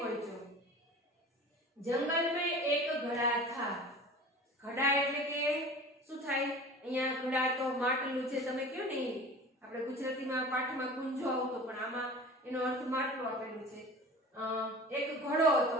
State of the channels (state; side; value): normal; both; correlation 0.39